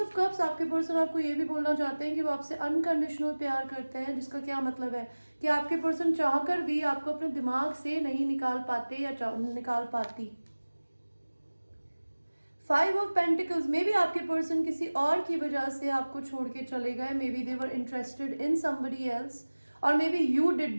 कप्स आपके पर्सन आपको ये भी बोलना चाहते हैं कि वो आपसे अनकंडीशनल प्यार करते हैं, जिसका क्या मतलब है कि आपके पर्सन चाहकर भी आपको अपने दिमाग से नहीं निकाल पाते या निकाल पाती. 5 ऑफ पेंटिकल्स, मे बी आपके पर्सन किसी और की वजह से आपको छोड़ के चले गए. Maybe they were interested in somebody else और maybe you did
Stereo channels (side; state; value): both; inverted; correlation -1.00